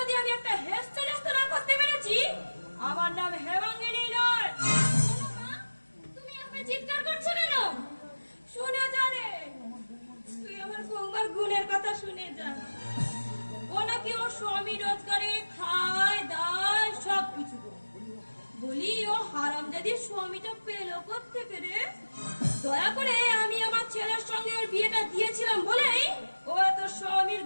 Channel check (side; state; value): both; inverted; correlation -1.00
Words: আমি একটা হেস্তে না করতে পেরেছি, আমার নাম হেমাঙ্গিনী নয়। তুমি আমার চিৎকার করছো কেন? শুনে জানে, তুই আমার বৌমার গুণের কথা শুনে যা। ও নাকি ওর স্বামী রোজগারে খায় দায় সবকিছু। বলি, ও হারামজাদির স্বামীটা পেলো করতে পেরে? দয়া করে আমি আমার ছেলের সঙ্গে ওর বিয়েটা দিয়েছিলাম বলেই ও এত স্বামীর